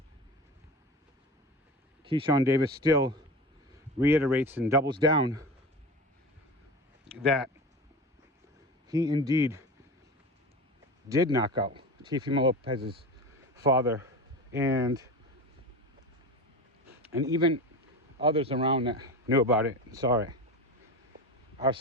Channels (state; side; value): normal; both; correlation 0.29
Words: Keyshawn Davis still reiterates and doubles down that he indeed did knock out Teofimo Lopez's father, and even others around that knew about it and saw it are